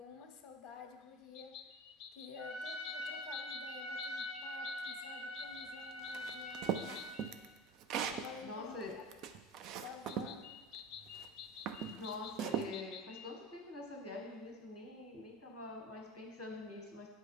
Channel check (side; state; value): both; normal; correlation 0.31